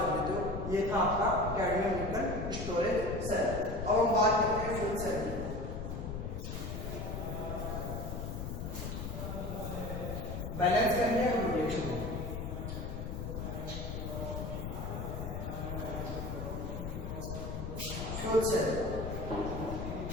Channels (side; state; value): left; noise; rumble, 5 dB below the sound